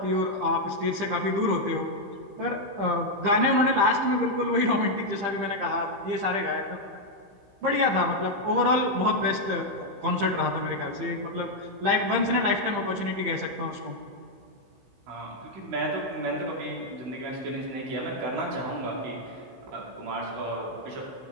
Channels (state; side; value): late; left; 15 ms